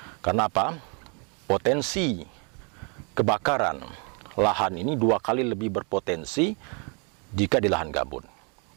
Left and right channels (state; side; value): quieter; left; 36.0 dB